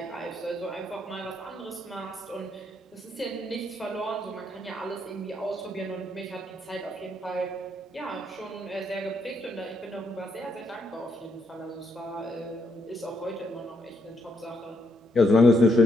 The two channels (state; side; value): normal; both; correlation 0.75